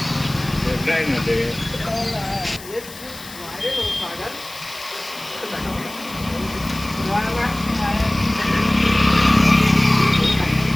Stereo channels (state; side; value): noise; left; hiss, 16 dB below the sound